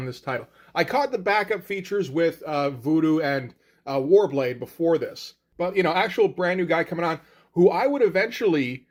this title. I caught the backup features with Voodoo and Warblade before this. But, actual brand new guy coming on who I would eventually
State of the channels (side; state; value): both; identical; correlation 1.00